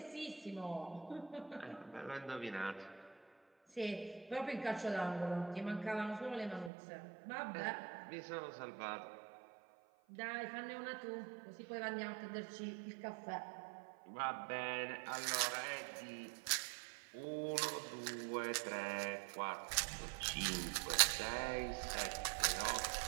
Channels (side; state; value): left; drops out; at 6.7 s